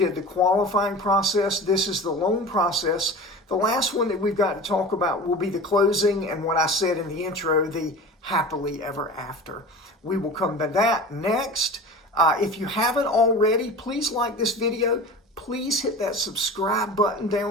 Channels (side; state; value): both; normal; correlation 0.35